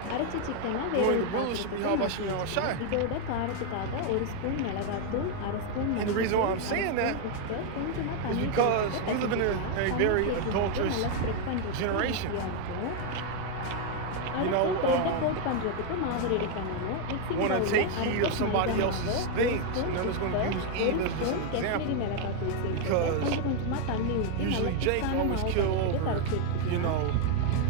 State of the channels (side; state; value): both; different; correlation 0.01